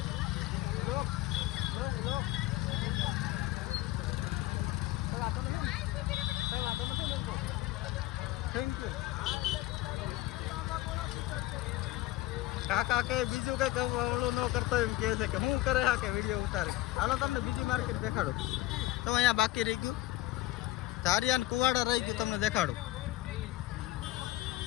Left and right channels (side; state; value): right; quieter; 16.8 dB